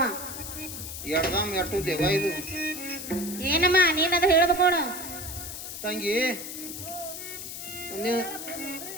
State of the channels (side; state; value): left; noise; hiss, 8 dB below the sound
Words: ಎಡ್ದಾಮ್ ಎಟ್ಟು ದೇವ ಇದು ಏನಮ್ಮ ನೀನದು ಹೇಳ್ಬೇಕು ನೋಡು ತಂಗಿ.